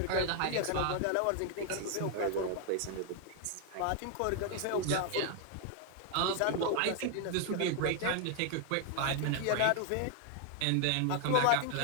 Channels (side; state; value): both; different; correlation 0.00